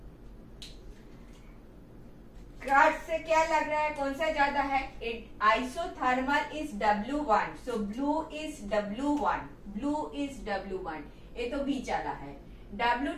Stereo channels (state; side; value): identical; both; correlation 1.00